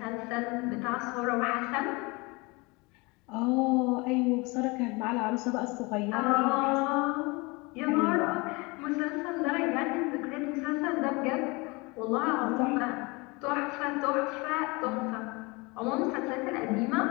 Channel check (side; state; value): right; quieter; 26.1 dB